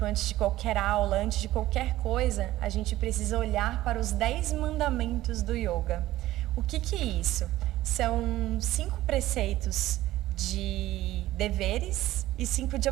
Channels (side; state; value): left; quieter; 15.6 dB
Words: antes de qualquer aula, antes de qualquer coisa, a gente precisa olhar para os 10 mandamentos do yoga. O que é isso? São 5 preceitos de deveres e 5 de